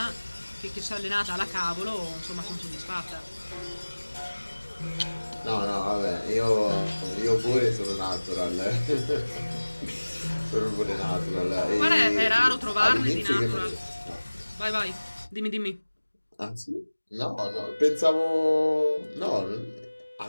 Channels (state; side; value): inverted; both; correlation -1.00